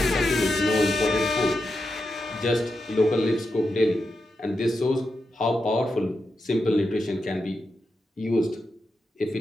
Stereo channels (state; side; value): normal; both; correlation 0.87